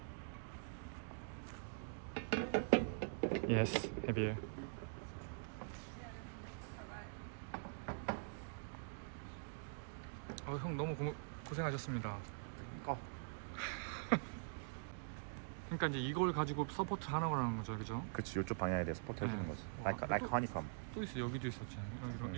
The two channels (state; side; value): silent; left; digital silence